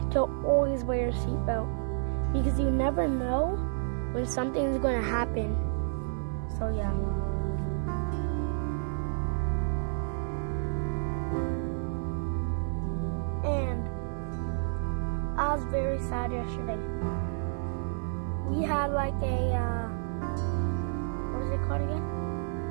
to always wear your seatbelt because you never know when something is going to happen. So yeah. And I was very sad yesterday. We had like a what is it called again?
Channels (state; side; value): silent; left; digital silence